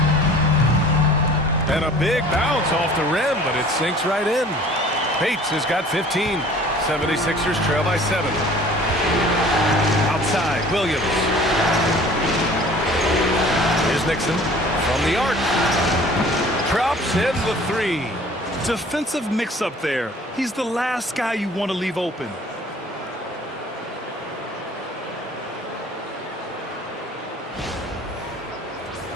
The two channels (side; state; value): both; normal; correlation 0.49